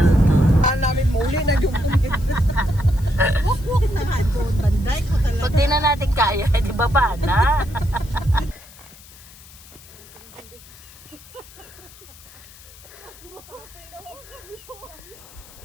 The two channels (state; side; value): noise; left; hiss, 21 dB below the sound